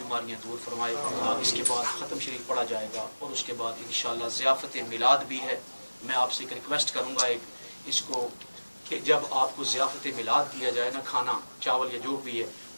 دور فرمائے۔ اس کے بعد ختم شریف پڑھا جائے گا، اور اس کے بعد انشاءاللہ ضیافت میلاد بھی ہے۔ میں آپ سے ایک ریکویسٹ کروں گا، اس کو کہ جب آپ کو ضیافت میلاد دیا جائے نا، کھانا چاول یا جو بھی ہے،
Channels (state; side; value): inverted; both; correlation -1.00